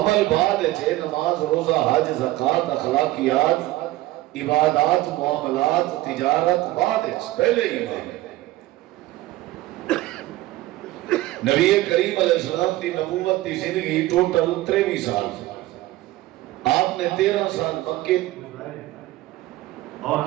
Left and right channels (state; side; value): quieter; left; 17.0 dB